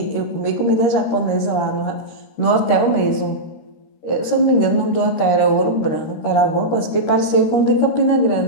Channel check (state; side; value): late; right; 13 ms